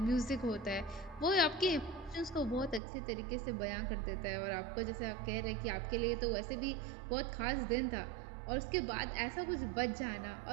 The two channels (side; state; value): left; drops out; at 2.8 s